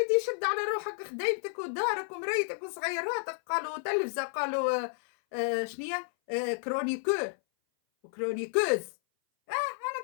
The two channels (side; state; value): right; silent; 57 dB below the other